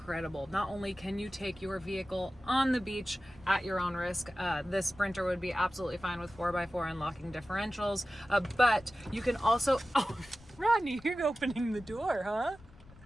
Not only can you take your vehicle on the beach at your own risk, this Sprinter would be absolutely fine with 4x4 and locking differentials, but you can also, oh, Rodney, you're opening the door,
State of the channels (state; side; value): noise; left; rumble, 23 dB below the sound